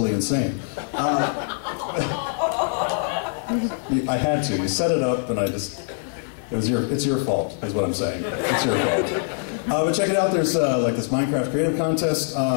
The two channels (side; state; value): right; silent; digital silence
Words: insane. I had to. You set it up, and it's your fault, is what I'm saying. It's your fault. But check it out. There's like this Minecraft creative contest